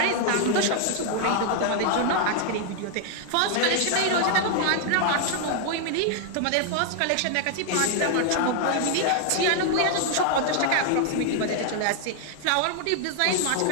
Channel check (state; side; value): different; both; correlation 0.00